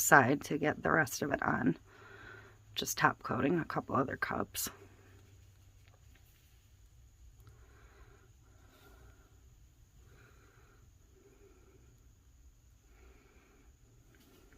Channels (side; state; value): both; identical; correlation 1.00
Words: to get the rest of it on. Just top coating a couple other cups.